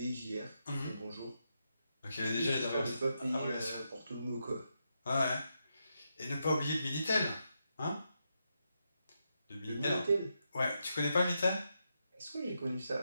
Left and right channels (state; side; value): inverted; both; correlation -0.84